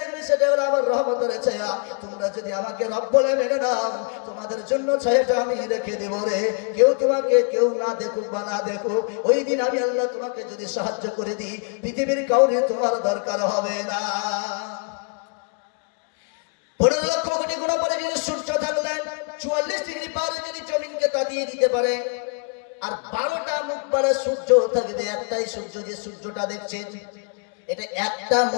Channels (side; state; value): right; quieter; 39.1 dB